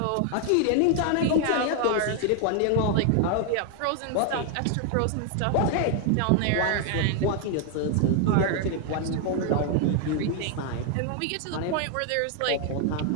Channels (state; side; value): different; both; correlation 0.00